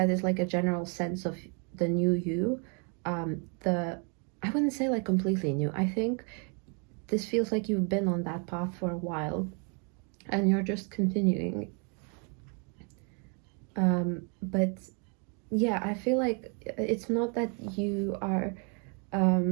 is like a general sense of the new you. I wouldn't say like completely new. I think this feels like you've been on that path for a while and you're just continuing. But yeah, I feel like it's not that you are,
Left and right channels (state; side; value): quieter; left; 37.4 dB